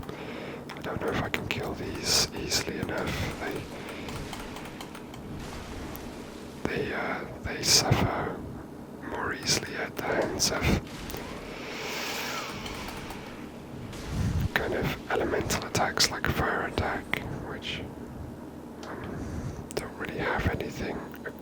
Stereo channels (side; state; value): both; identical; correlation 1.00